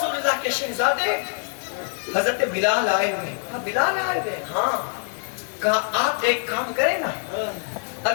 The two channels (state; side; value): silent; right; 62 dB below the other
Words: اللہ کے شہزادے, حضرت بلال آئے ہوئے. کہا بلال آئے ہوئے؟ ہاں. کہا آپ ایک کام کریں نا,